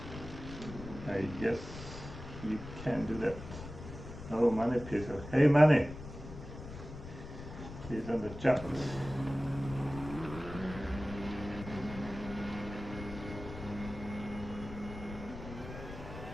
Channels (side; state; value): left; noise; rumble, 11 dB below the sound